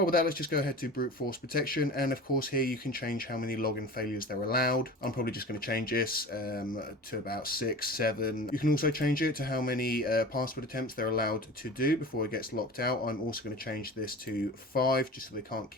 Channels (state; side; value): normal; both; correlation 0.37